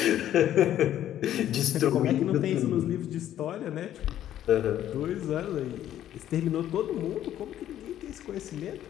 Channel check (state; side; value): quieter; right; 11.7 dB